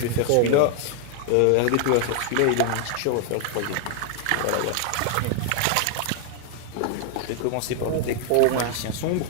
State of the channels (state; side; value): different; both; correlation 0.00